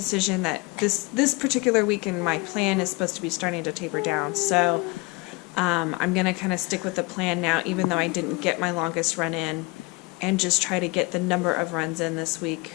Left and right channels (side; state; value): right; quieter; 26.0 dB